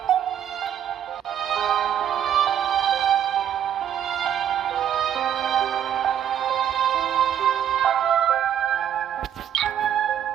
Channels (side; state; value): left; quieter; 9.9 dB